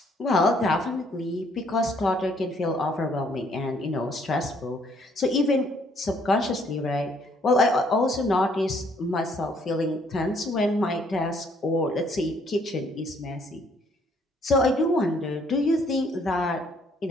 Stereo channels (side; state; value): both; normal; correlation 0.66